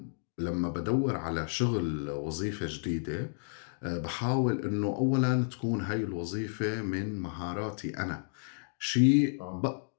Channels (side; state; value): right; silent; digital silence